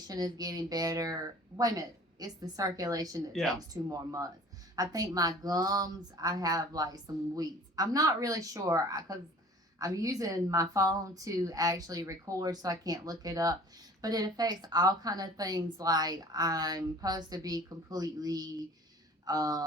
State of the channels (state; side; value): normal; both; correlation 0.47